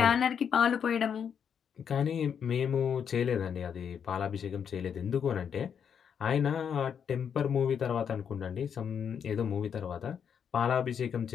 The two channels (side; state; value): right; quieter; 7.6 dB